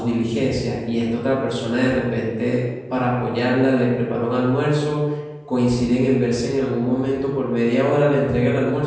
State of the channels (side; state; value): both; identical; correlation 1.00